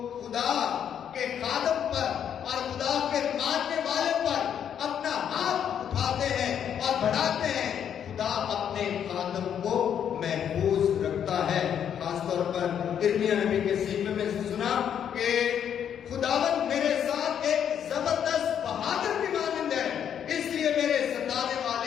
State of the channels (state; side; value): quieter; right; 8.9 dB